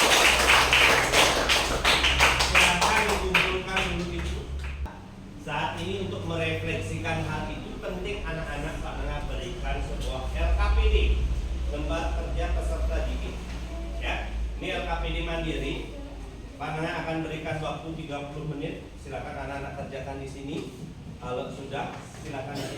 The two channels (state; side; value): identical; both; correlation 1.00